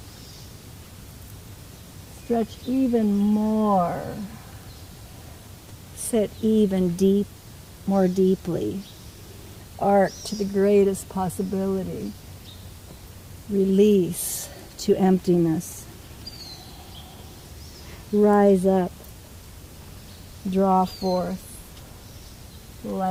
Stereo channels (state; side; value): identical; both; correlation 1.00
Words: Stretch even more. Sit even more deeply. Arc to the greatest possibility. Release to emptiness. Rise up. Draw forth